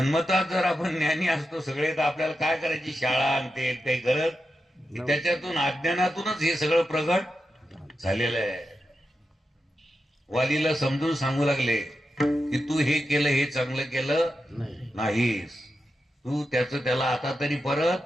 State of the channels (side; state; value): both; normal; correlation 0.89